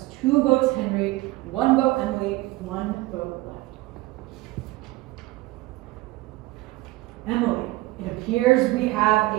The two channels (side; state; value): left; quieter; 19.3 dB